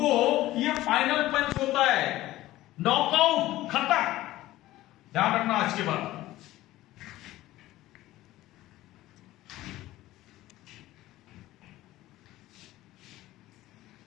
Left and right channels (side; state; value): right; quieter; 16.1 dB